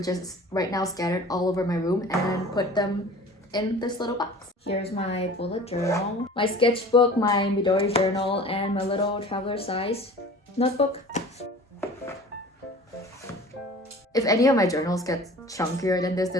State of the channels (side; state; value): both; normal; correlation 0.43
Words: is right now scattered all over my room, and put them in this little box. Here's my bullet journal, my sketchbook, my Midori journal, and my little traveler size notebook. If any of my journals get chunkier than